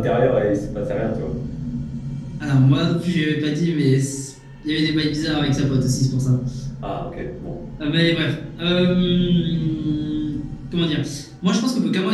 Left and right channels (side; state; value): both; identical; correlation 1.00